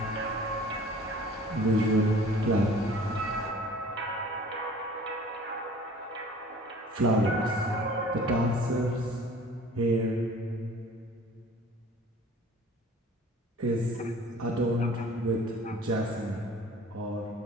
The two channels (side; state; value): both; normal; correlation 0.48